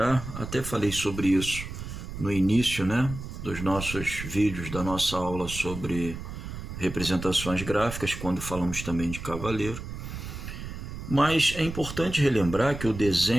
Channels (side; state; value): right; noise; rumble, 9 dB below the sound